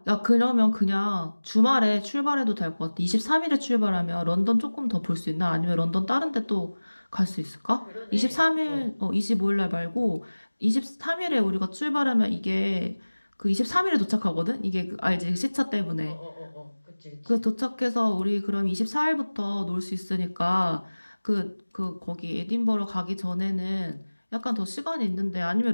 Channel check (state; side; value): inverted; both; correlation -1.00